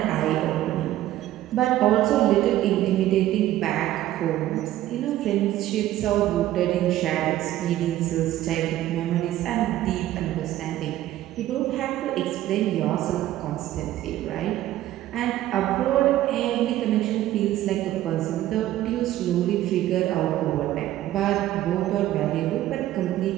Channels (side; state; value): left; quieter; 14.0 dB